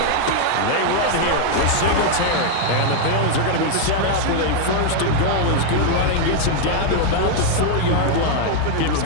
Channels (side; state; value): both; different; correlation 0.00